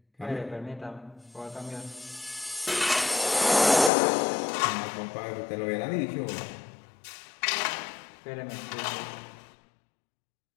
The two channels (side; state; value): right; drops out; at 3.9 s